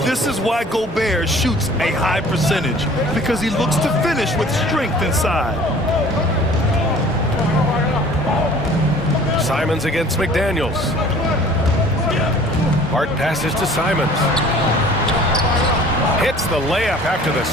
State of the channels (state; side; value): normal; both; correlation 0.49